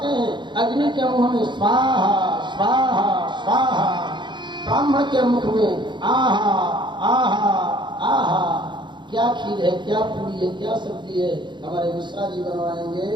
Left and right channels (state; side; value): late; left; 0.22 ms